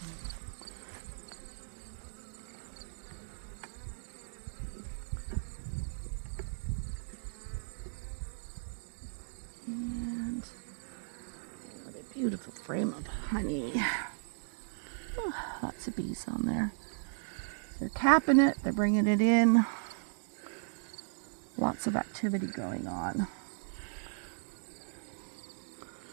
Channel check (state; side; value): silent; left; digital silence